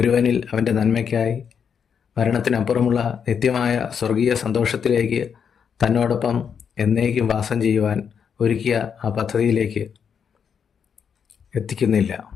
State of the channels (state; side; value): quieter; right; 7.2 dB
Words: അവൻ്റെ നന്മയ്ക്കായി മരണത്തിനപ്പുറമുള്ള നിത്യമായ സ്വർഗീയ സന്തോഷത്തിലേക്ക് തന്നോടൊപ്പം എന്നേക്കും വാസം ചെയ്യുവാൻ ഒരുക്കിയ ആ പദ്ധതിയിലേക്ക് എത്തിക്കുന്നില്ല